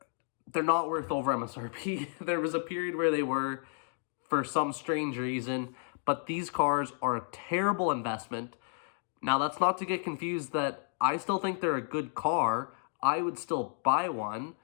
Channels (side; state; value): right; silent; 56 dB below the other